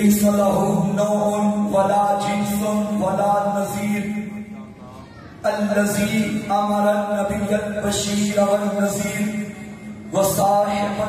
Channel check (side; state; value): both; identical; correlation 1.00